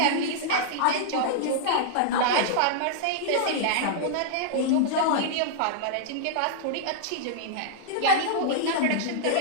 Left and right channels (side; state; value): both; different; correlation -0.01